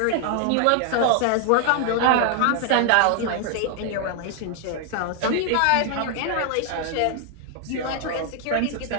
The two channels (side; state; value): both; different; correlation 0.00